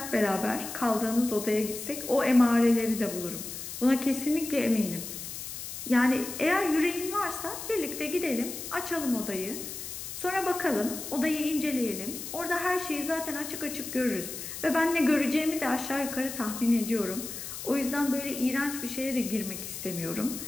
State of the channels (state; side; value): noise; left; hiss, 8 dB below the sound